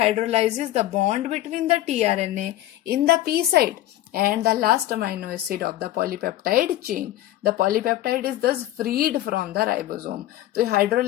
the bond between the tRNA in the P side and the last amino acid of the polypeptide chain. The polypeptide is thus freed from the ribosome. तो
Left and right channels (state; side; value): quieter; right; 14.5 dB